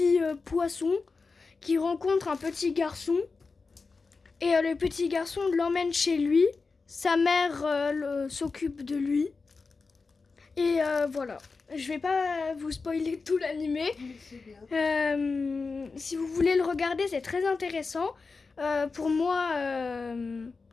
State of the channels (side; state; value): right; quieter; 4.3 dB